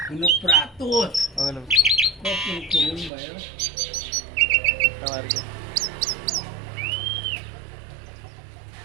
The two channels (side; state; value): left; drops out; at 3.1 s